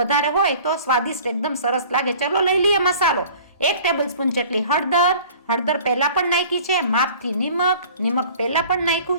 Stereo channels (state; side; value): inverted; both; correlation -0.47